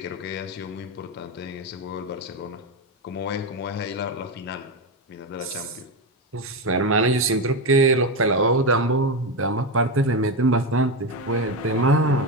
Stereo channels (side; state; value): both; normal; correlation 0.13